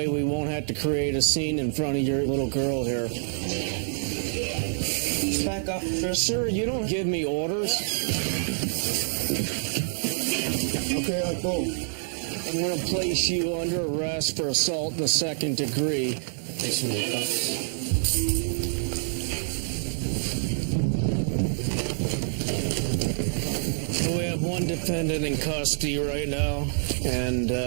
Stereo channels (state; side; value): silent; left; digital silence